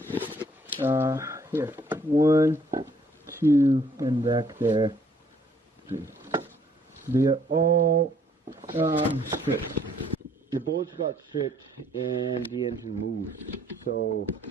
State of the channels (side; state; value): both; normal; correlation 0.63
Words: Here, 1, 2, and back there, 3. They are all stripped. The bolts got stripped and the engine moved, so